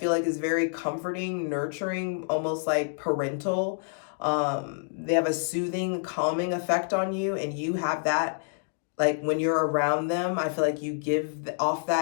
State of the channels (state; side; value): silent; right; digital silence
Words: like is very comforting, nurturing, almost like parental. They have a soothing, calming effect on you, and you have that like when you're around them, I feel like you give off